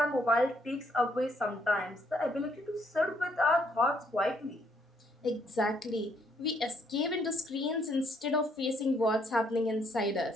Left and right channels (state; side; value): normal; both; correlation 0.70